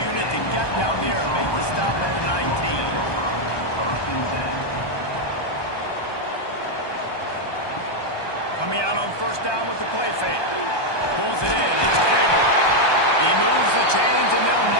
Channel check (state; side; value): late; right; 1.2 ms